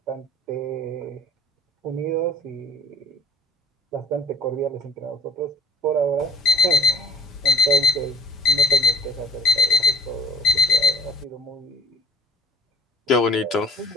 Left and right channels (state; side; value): normal; both; correlation 0.51